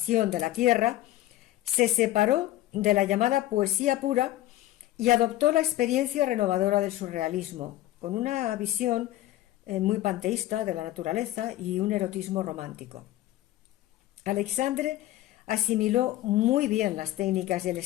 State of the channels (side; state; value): right; quieter; 14.8 dB